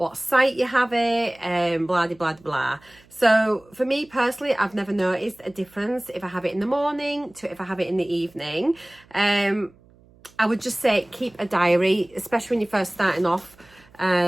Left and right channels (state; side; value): noise; right; hum, 28 dB below the sound